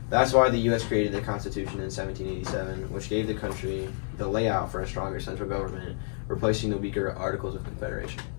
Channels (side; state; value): right; silent; digital silence